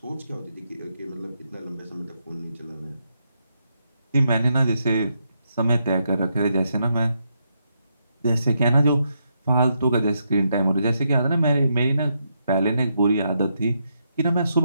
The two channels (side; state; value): both; inverted; correlation -0.80